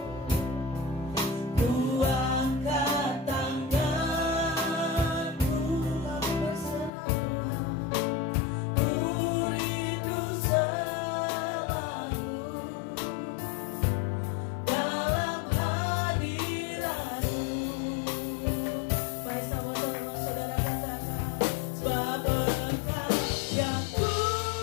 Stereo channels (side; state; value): right; drops out; at 6.9 s